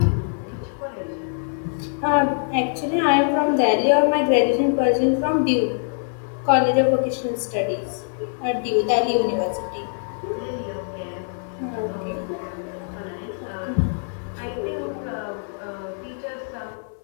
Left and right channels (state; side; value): silent; right; 63 dB below the other